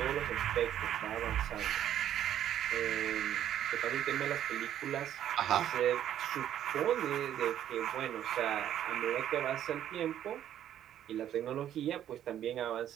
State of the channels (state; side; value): quieter; left; 10.9 dB